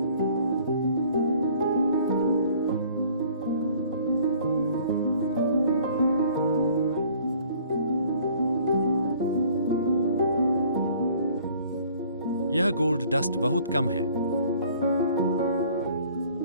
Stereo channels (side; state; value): both; inverted; correlation -0.55